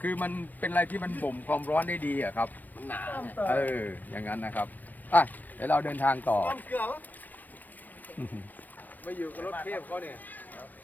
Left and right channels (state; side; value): late; right; 0.087 ms